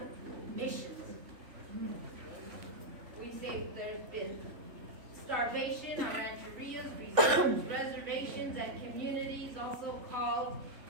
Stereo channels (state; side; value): late; left; 3.5 ms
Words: missions. We say there's been starvation on rancherias, reservations, and communities, also called